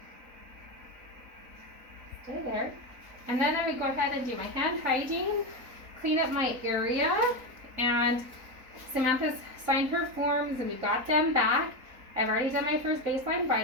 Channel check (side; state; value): left; late; 4.0 ms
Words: Stay there. And then I would go ahead and do my hand hygiene, clean up my area, and Samantha's signed her forms and we got them back. I've already done my first baseline